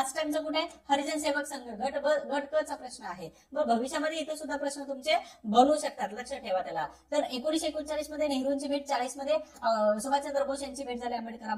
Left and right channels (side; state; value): both; identical; correlation 1.00